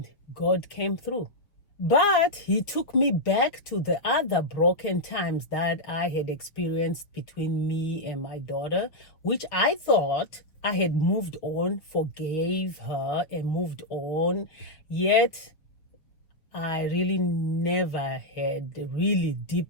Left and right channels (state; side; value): late; right; 6.2 ms